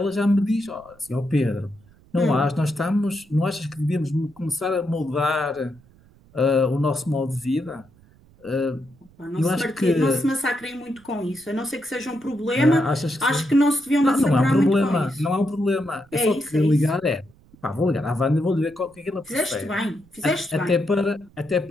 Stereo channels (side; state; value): right; noise; rumble, 28 dB below the sound